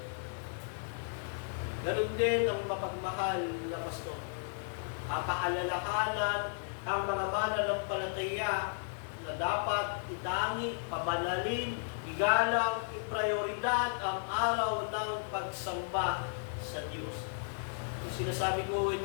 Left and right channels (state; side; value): silent; right; digital silence